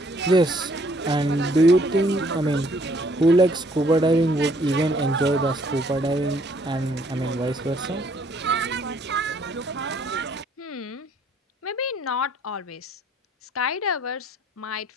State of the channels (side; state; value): both; normal; correlation 0.64